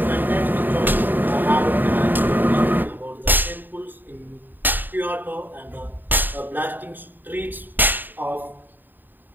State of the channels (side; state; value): left; late; 0.091 ms